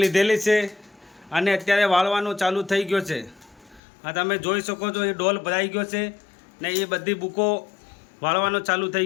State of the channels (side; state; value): right; drops out; at 3.8 s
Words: લીધેલી છે અને અત્યારે વાળવાનું ચાલુ થઈ ગયો છે। આ તમે જોઈ શકો છો, એ ડોલ ભરાઈ ગયો છે ને એ બધી બુકો વાળવાનો ચાલુ થઈ